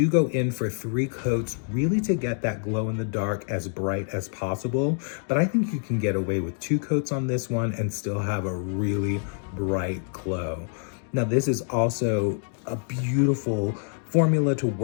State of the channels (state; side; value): silent; right; 60 dB below the other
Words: go in for 3 coats really to get that glow in the dark as bright as possible. But I think you can get away with 2 coats on this one and still have a really bright glow. Now this is also a beautiful formula to